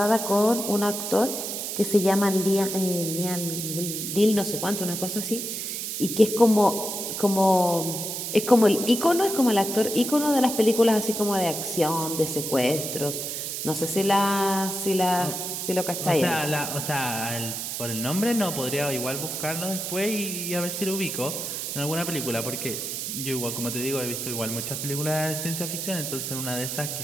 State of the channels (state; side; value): noise; right; hiss, 4 dB below the sound